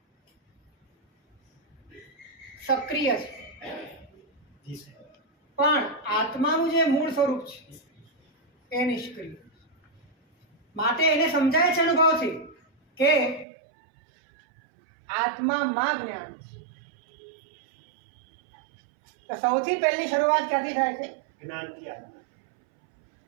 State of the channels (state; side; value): drops out; left; at 13.5 s